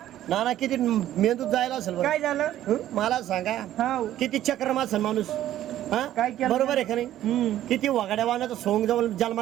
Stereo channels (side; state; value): left; quieter; 12.8 dB